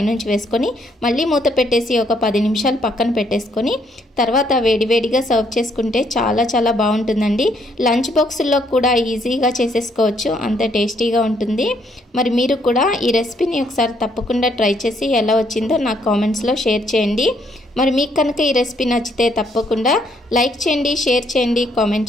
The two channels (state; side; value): normal; both; correlation 0.70